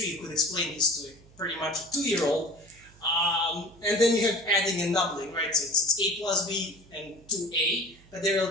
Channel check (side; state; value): right; noise; hum, 25 dB below the sound